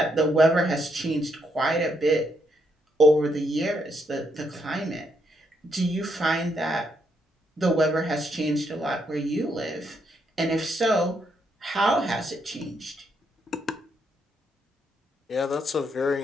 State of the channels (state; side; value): normal; both; correlation 0.76